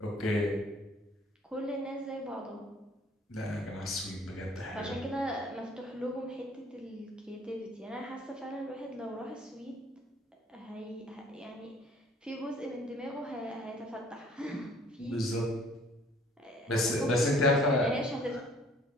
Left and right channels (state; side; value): normal; both; correlation 0.56